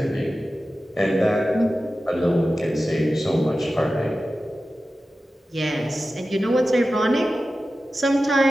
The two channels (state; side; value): normal; both; correlation 0.94